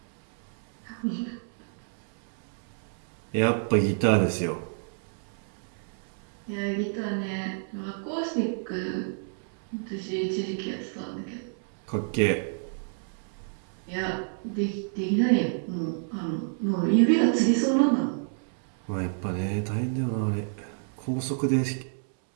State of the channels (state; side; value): silent; left; 59 dB below the other